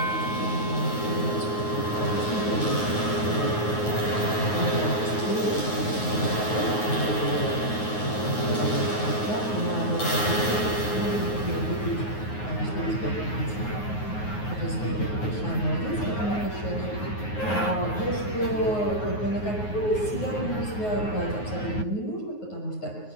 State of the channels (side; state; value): right; late; 9.5 ms